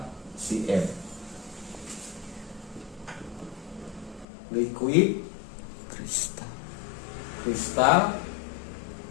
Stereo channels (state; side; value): drops out; right; at 4.2 s